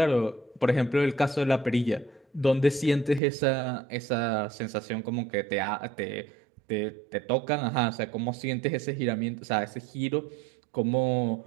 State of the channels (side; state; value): left; drops out; at 3.2 s